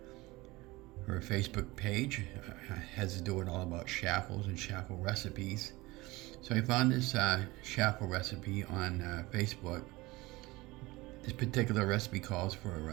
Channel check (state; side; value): quieter; left; 21.2 dB